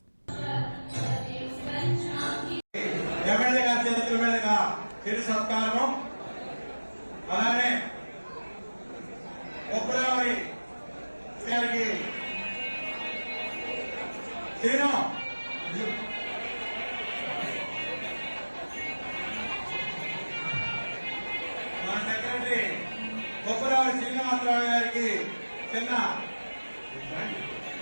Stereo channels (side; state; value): both; inverted; correlation -1.00